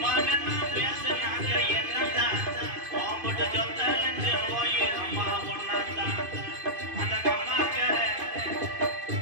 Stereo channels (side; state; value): left; late; 2.5 ms